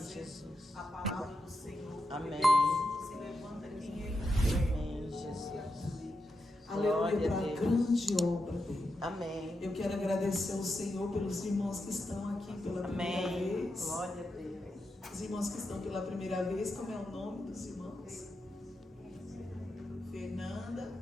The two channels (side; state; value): both; normal; correlation 0.86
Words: a palavra do Senhor. Amém. Se levanta quem Ele quer. Amém, Jesus. Aleluia, para a grande obra dele. Amém. Eu quero agradecer ao Senhor pelos irmãos que estão aqui pela primeira vez. Glória a Deus. Os irmãos que estão pela primeira vez, como é o nome dos irmãos?